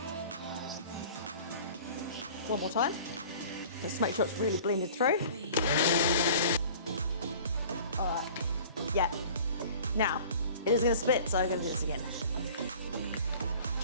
One more time. Let's make sure it's really blended through. All right, yeah. Now, it is gonna spit, so I'm gonna do this again.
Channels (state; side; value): inverted; both; correlation -0.46